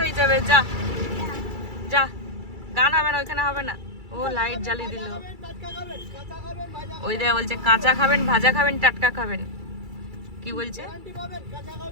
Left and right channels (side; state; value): left; late; 2.3 ms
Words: হয়ে যাবে, যা যা, গান হবে না ওইখানে, হবে না। ও লাইট জ্বালিয়ে দিল, ওই দেয়া বলছে কাঁচা খাবেন, ভাজা খাবেন, টাটকা খাবেন, কি বলছে?